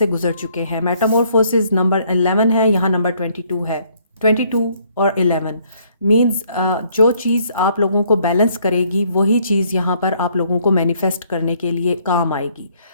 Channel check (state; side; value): inverted; both; correlation -0.66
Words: गुजर चुके हैं। मेटामॉर्फोसिस नंबर 11 है, यहाँ नंबर 22 है। 22 और 11 मीन्स जो चीज़ आप लोगों को बैलेंस करेगी वही चीज़ यहाँ पर आप लोगों को मैनिफेस्ट करने के लिए काम आएगी।